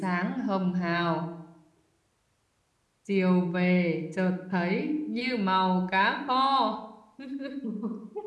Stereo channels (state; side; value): identical; both; correlation 1.00